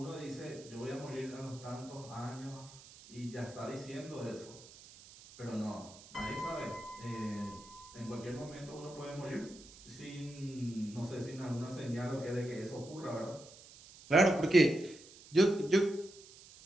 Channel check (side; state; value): right; noise; hiss, 19 dB below the sound